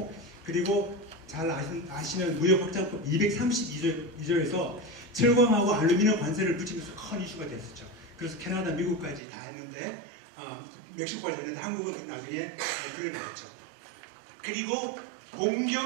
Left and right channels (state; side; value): drops out; left; at 9.2 s